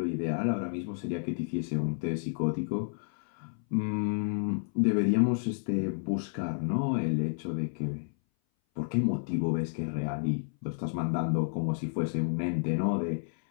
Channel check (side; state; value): right; silent; 57 dB below the other